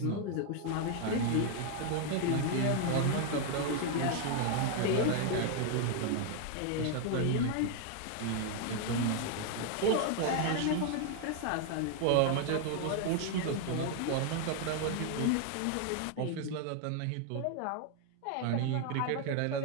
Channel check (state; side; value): different; both; correlation 0.00